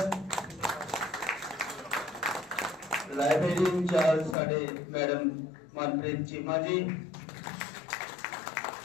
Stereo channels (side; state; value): right; drops out; at 4.4 s